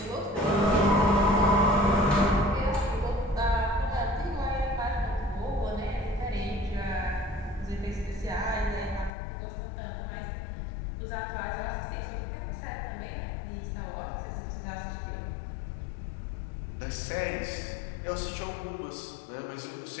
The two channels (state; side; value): drops out; right; at 9.1 s